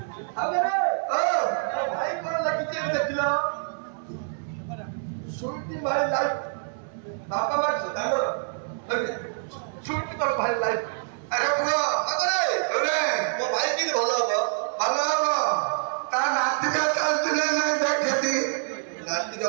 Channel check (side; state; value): left; silent; 61 dB below the other